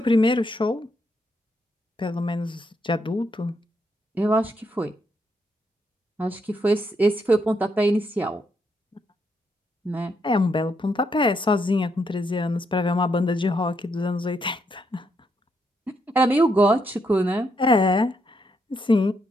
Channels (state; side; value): normal; both; correlation 0.77